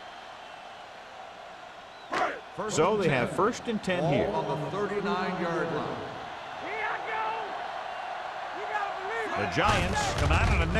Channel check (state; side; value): identical; both; correlation 1.00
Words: So they have 1st and 10 here. On the 39-yard line. The Giants come out in a